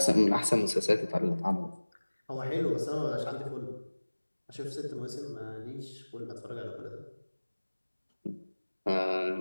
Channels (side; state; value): both; inverted; correlation -1.00